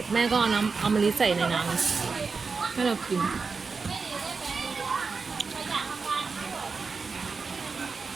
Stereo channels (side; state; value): left; quieter; 4.7 dB